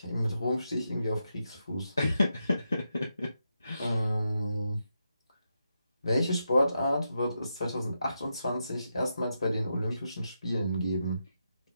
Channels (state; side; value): inverted; both; correlation -0.85